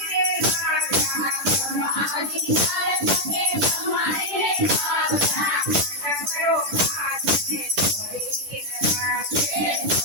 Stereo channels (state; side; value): late; left; 10 ms